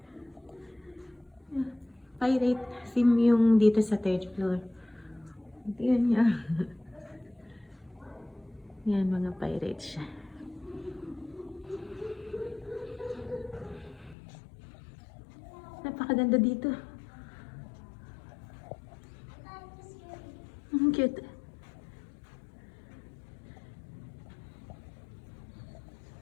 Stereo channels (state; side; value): drops out; right; at 14.2 s